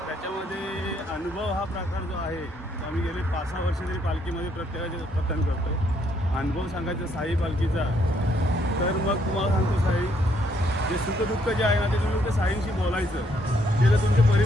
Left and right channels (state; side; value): normal; both; correlation 0.70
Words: त्याच्यामध्ये अनुभव हा प्रकार जो आहे तो आम्ही गेले 5-6 वर्ष तरी पालखीमध्ये प्रत्येकाचे पतन करतो. अनुभव सांगायचा साई पालखीचा तर मग तुम्हाला सांगतो, साई जे सुखदुःख जे आहे ना ते तुम्ही ते साईंशी बोलायचं. ते जर तुमचे